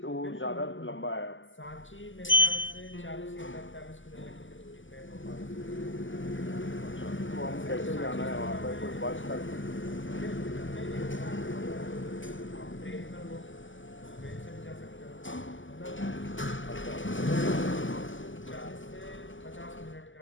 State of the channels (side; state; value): right; late; 0.56 ms